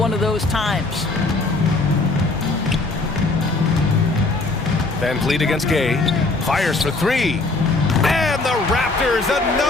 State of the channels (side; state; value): right; quieter; 3.3 dB